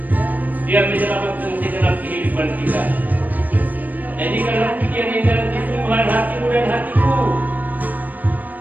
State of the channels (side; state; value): left; late; 0.083 ms